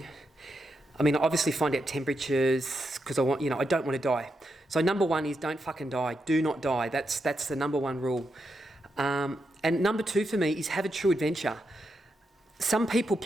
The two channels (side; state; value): both; normal; correlation 0.84